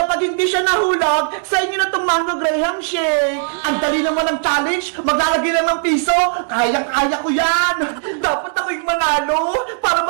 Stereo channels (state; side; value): silent; left; 60 dB below the other